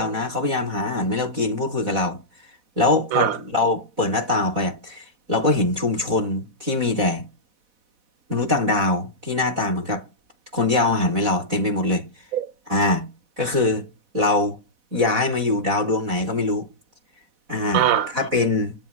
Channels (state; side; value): late; left; 4.1 ms